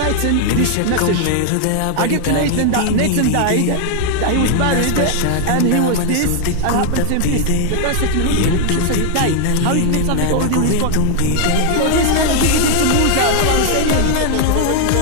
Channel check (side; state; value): both; different; correlation 0.00